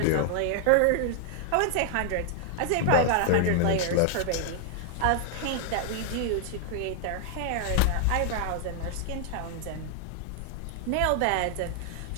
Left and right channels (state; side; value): different; both; correlation 0.00